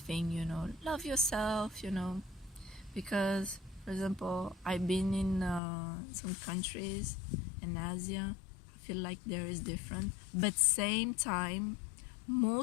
thing, love yourself, because for example, I've been in some countries in Asia. I feel like there is different, but same time,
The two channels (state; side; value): drops out; right; at 5.6 s